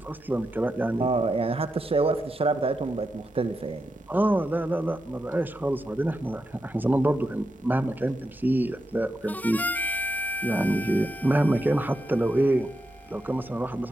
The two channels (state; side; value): normal; both; correlation 0.86